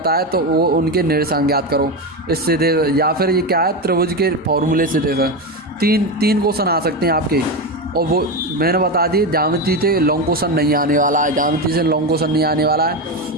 है तो वो उनके निर्देशांक ज्ञात करो इससे दे, या फिर ये क्या है त्रिभुज के फॉर्मूले से दे। तीन क्वेश्चन आ सकते हैं आपके, और वो मैंने बता दी ज्यामिति से लॉन्ग क्वेश्चन नहीं आने वाला है। ज्यामिति से लॉन्ग क्वेश्चन नहीं आने वाला है,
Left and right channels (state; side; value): normal; both; correlation 0.16